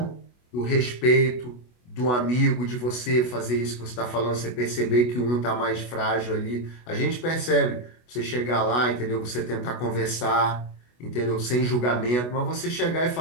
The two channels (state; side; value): late; right; 24 ms